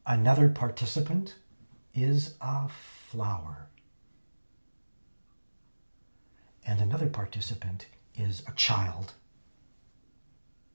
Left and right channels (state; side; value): inverted; both; correlation -1.00